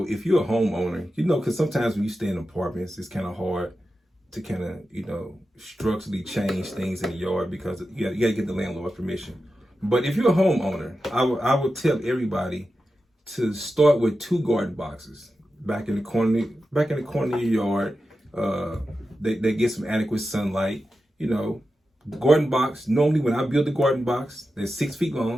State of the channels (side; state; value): both; normal; correlation 0.91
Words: if you're a homeowner, you know, because sometimes when you stay in apartments, it's kind of hard to kind of, you know, structurally change things in the yard because you got to get the landlord's permission. But if you're a homeowner, I would tell everybody to start with 2 garden boxes back in the corner of your yard. They get some adequate sunlight. You know, the garden box, normally when I build the garden box, they're 6 feet